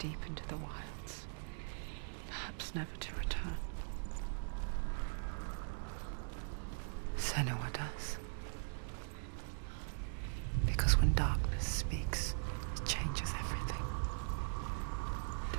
into the wilds, perhaps never to return. Senua does. Because when darkness speaks, it changes everything.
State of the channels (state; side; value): silent; left; digital silence